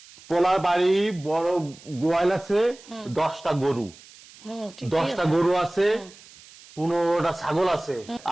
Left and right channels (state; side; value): noise; right; hiss, 22 dB below the sound